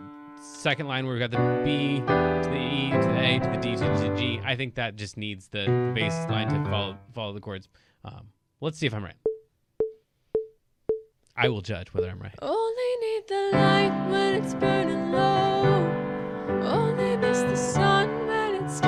second line where we've got the B to the E to the A to the D to the G. I think that just needs the bass line to follow the chords. Let's see if I'm right. I will judge whether I'm right. Only need the light when it's burning low. Only miss the sun when it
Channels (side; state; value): both; identical; correlation 1.00